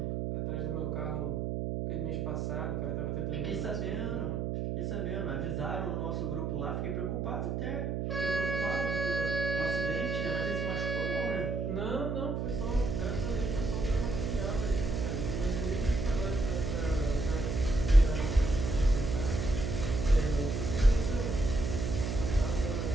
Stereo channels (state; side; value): noise; right; hum, 1 dB below the sound